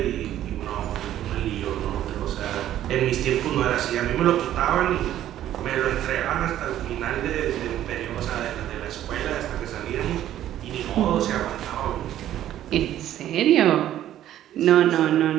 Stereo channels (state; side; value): quieter; left; 12.2 dB